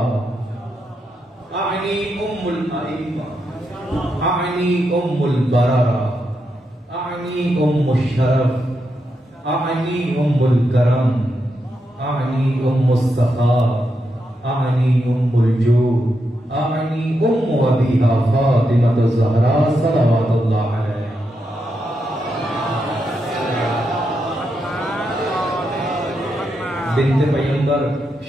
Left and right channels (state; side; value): normal; both; correlation 0.84